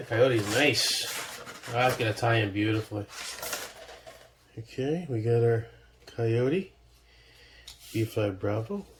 coyote's nice. Oh, that's going to tie in beautifully. Okay, we got our coyote. B5 Bravo.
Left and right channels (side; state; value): both; identical; correlation 1.00